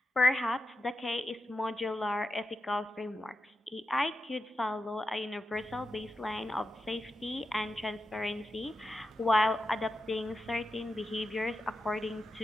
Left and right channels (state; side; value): normal; both; correlation 0.89